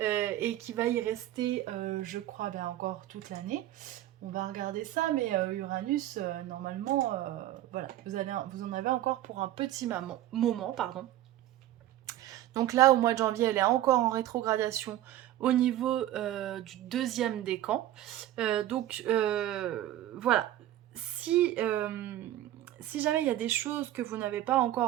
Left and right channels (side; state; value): left; quieter; 13.5 dB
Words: et qui va y rester, je crois, ben, encore toute l'année. On va regarder ça, mais Uranus, normalement, voilà, vous en avez encore pour un petit moment, pardon. Donc là, au mois de janvier, elle est encore en rétrogradation au niveau du deuxième décan. Voilà, si jamais il y a des choses que vous n'avez pas